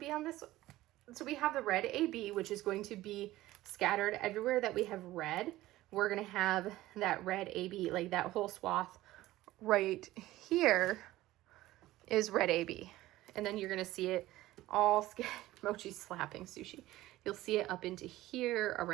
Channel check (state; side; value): quieter; left; 16.5 dB